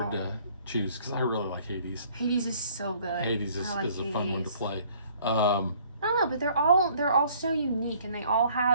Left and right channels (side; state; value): both; inverted; correlation -0.57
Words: to choose, because I really like Hades. Hades is so good. Hades is a fun one to play. I don't know, but they're all so unique, and they all